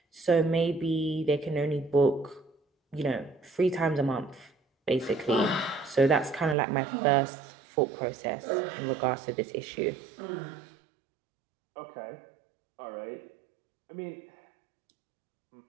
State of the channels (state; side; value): drops out; left; at 6.6 s